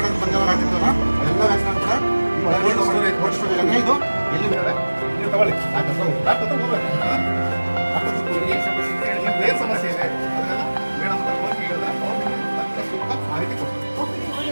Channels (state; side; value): inverted; both; correlation -1.00